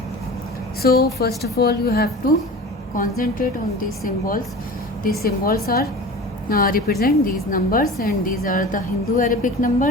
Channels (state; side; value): normal; both; correlation 0.36